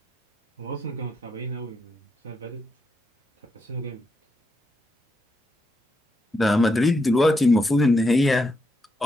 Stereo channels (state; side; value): normal; both; correlation 0.82